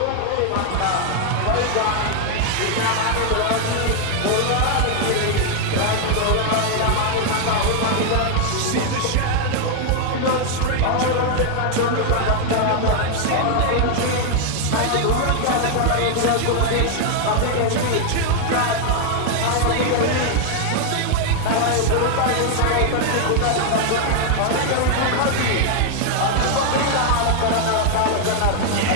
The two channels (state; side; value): different; both; correlation 0.00